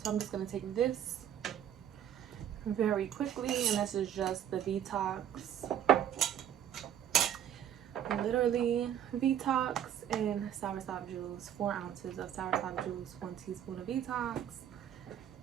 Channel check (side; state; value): left; quieter; 10.1 dB